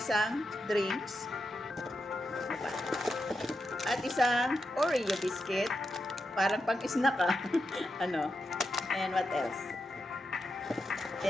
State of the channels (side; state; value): both; normal; correlation 0.87